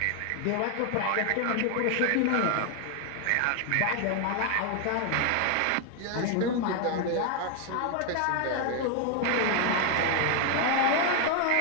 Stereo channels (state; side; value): different; both; correlation 0.01